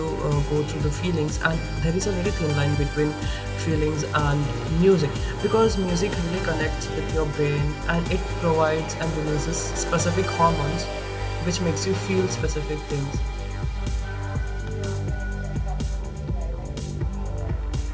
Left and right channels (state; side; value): identical; both; correlation 1.00